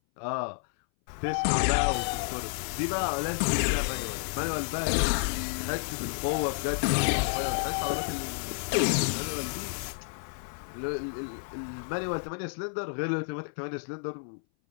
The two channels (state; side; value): silent; right; 58 dB below the other